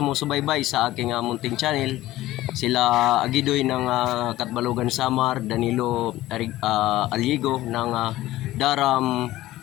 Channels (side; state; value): right; quieter; 16.0 dB